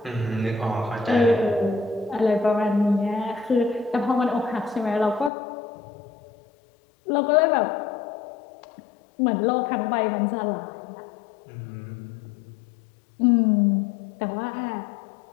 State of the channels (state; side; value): drops out; right; at 5.3 s